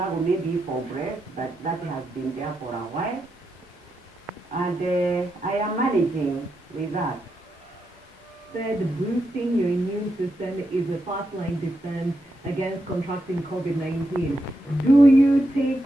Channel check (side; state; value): both; normal; correlation 0.84